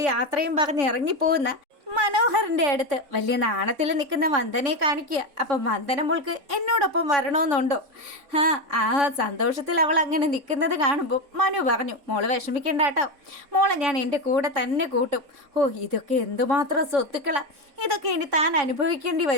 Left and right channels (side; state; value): left; late; 3.6 ms